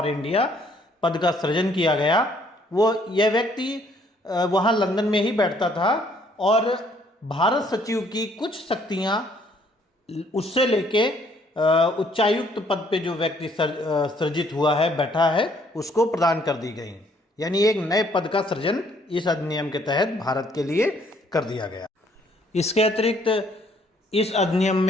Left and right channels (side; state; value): both; normal; correlation 0.64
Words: इंडिया पद का सृजन किया गया। यह व्यक्ति वहाँ लंदन में ही बैठता था और भारत सचिव की कुछ शक्तियाँ उससे लेके उच्चायुक्त पद पे जो व्यक्ति सृजित हुआ है, बैठा है, उसको प्रदान कर दी गई। यानी एक नए पद का सृजन इस अधिनियम के तहत भारत के लिए कर दिया गया। इसके अतिरिक्त इस अधिनियम